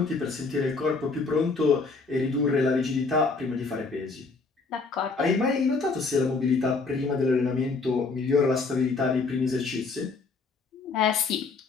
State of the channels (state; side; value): quieter; right; 4.2 dB